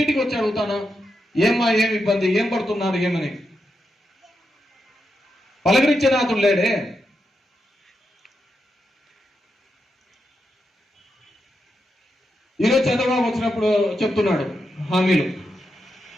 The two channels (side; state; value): both; normal; correlation 0.85